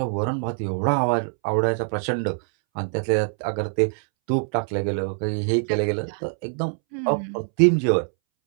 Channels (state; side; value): silent; left; 63 dB below the other